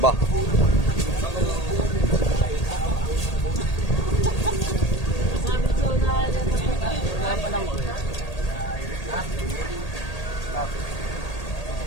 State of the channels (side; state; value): right; late; 1.8 ms